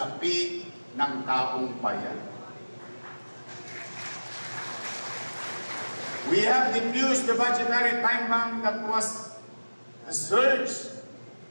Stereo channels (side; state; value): both; inverted; correlation -1.00